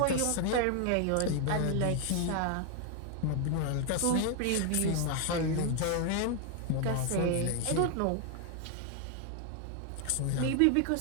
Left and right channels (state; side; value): different; both; correlation 0.00